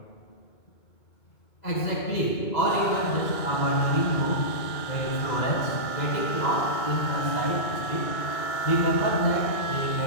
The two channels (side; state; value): right; late; 2.2 ms